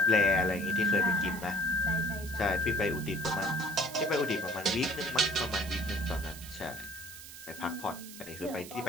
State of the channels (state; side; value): noise; right; hiss, 14 dB below the sound